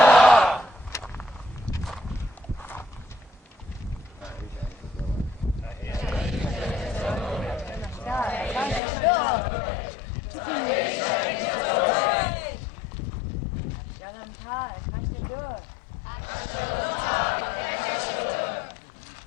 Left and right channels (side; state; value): right; drops out; at 8.8 s